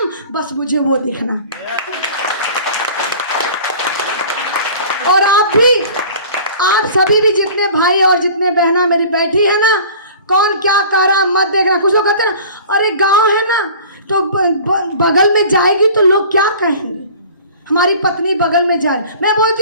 बस मुझे वो दिखना। और आप सभी भी, जितने भाई और जितने बहना मेरी बैठी है ना, कौन क्या कर रहा मत देखना। कुछ लोग कहते हैं ना, अरे गाँव है ना तो बगल में जाएगी तो लोग क्या कहेंगे, हमारी पत्नी बगल में जाए। मैं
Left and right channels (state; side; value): inverted; both; correlation -0.44